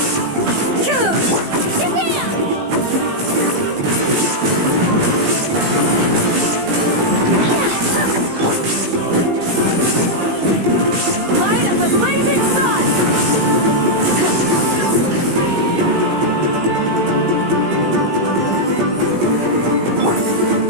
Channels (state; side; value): late; left; 17 ms